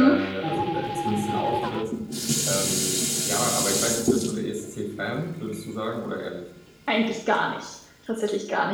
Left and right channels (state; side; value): identical; both; correlation 1.00